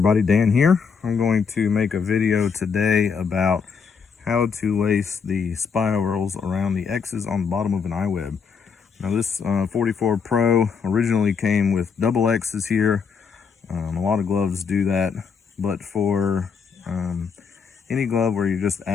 Dan here. I'm going to make a video today about how to lace the spirals around the X's on the bottom of an iWeb. Now this 44 Pro originally came with double X's here. A lot of gloves do that, but for any glove where you're just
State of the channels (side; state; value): right; quieter; 6.0 dB